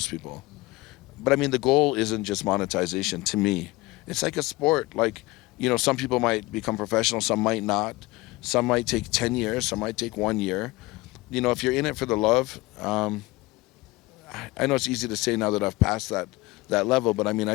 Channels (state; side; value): quieter; right; 21.2 dB